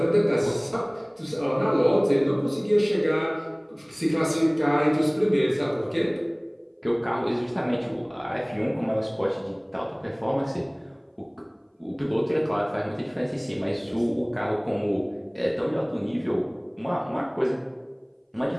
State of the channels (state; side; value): identical; both; correlation 1.00